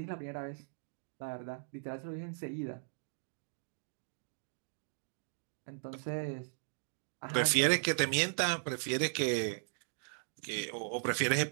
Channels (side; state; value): left; silent; digital silence